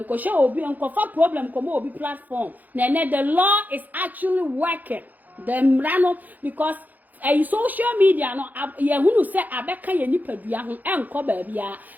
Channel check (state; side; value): late; left; 0.083 ms